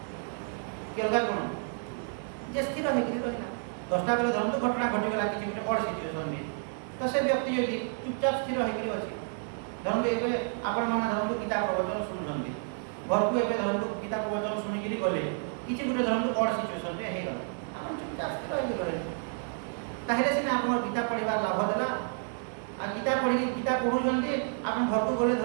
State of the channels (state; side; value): silent; left; 58 dB below the other